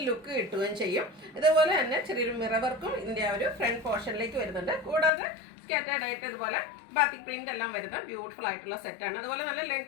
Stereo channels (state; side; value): drops out; right; at 5.1 s